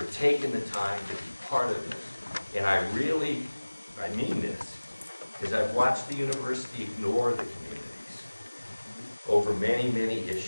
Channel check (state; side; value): inverted; both; correlation -1.00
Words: taking the time to be part of this. And I mean this, because I've watched the university ignore the communities over many, many